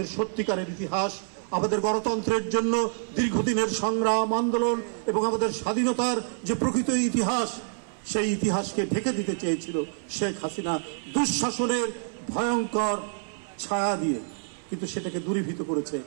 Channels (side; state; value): left; silent; 60 dB below the other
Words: সত্যিকারের ইতিহাস, আমাদের গণতন্ত্রের জন্য দীর্ঘদিনের সংগ্রাম আন্দোলন এবং আমাদের স্বাধীনতার যে প্রকৃত ইতিহাস, সেই ইতিহাসকে ঢেকে দিতে চেয়েছিল শেখ হাসিনা দুঃশাসনের ভয়ঙ্কর ছায়া দিয়ে। কিন্তু সেটাকে দূরীভূত করেছে